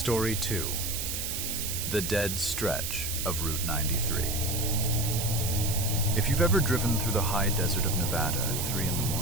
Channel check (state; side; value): noise; right; hiss, 3 dB below the sound